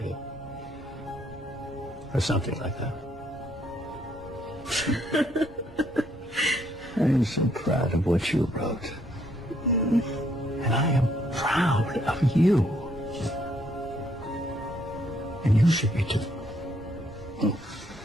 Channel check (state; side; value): normal; both; correlation 0.69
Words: it. Or something like that. I am so proud of what you wrote. And I am proud of you. And you should be too.